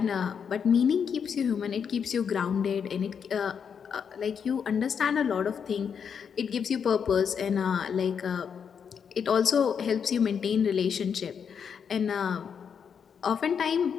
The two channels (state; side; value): quieter; right; 7.0 dB